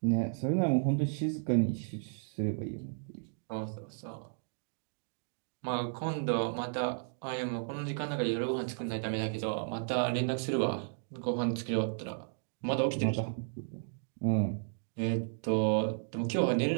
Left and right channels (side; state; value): left; silent; digital silence